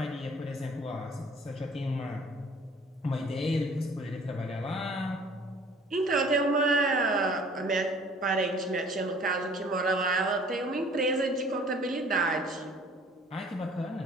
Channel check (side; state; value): both; normal; correlation 0.52